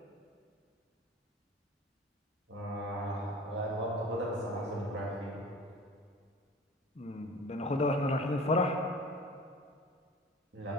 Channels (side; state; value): both; normal; correlation 0.42